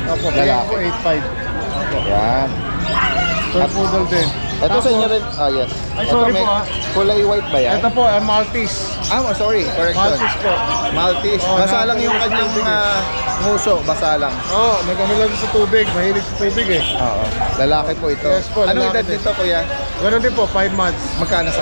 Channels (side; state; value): both; inverted; correlation -1.00